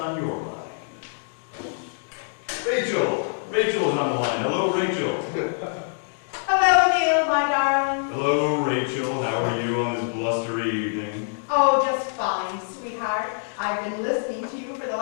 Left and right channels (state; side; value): silent; right; digital silence